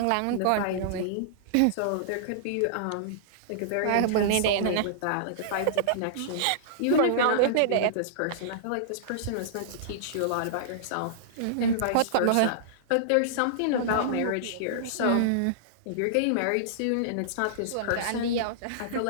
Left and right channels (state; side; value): different; both; correlation -0.02